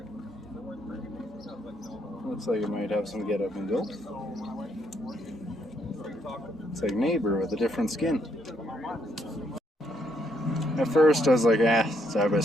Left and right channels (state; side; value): normal; both; correlation 0.73